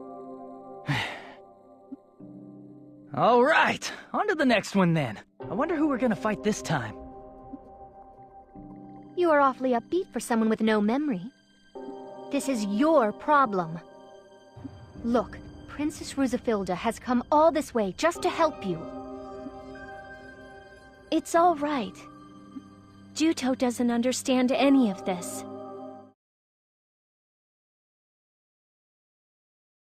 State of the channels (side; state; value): both; identical; correlation 1.00